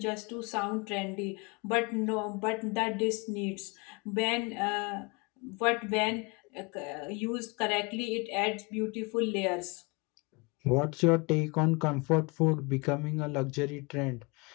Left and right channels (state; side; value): quieter; right; 28.9 dB